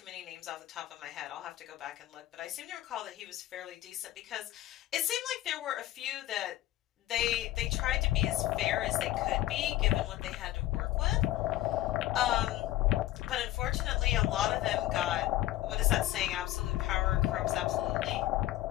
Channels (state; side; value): quieter; right; 14.8 dB